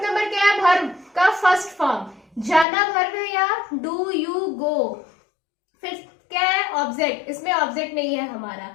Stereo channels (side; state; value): right; drops out; at 2.7 s